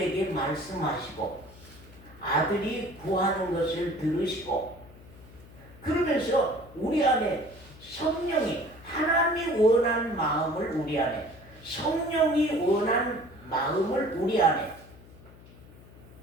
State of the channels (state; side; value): noise; left; hum, 21 dB below the sound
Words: 말씀하시고 아들이 구하는 것을 들으시고 그러면서 우리 안에 성령이 하나님이 원한 마음을 우리 안에 성령이 원한 마음을 우리 안에